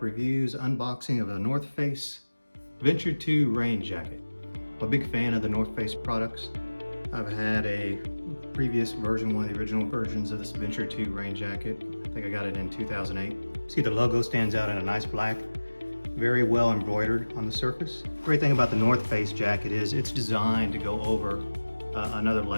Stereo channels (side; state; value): both; inverted; correlation -1.00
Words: reviews, unboxing of the North Face Venture 2 rain jacket. I'm a big fan of the North Face products. I've had a previous version, one of the original versions of this Venture 2 rain jacket. I think I got it in 2008. See, the logo stands out in a nice black, very well embroidered on the surface. Great thing about the North Face jacket is it's designed to go over another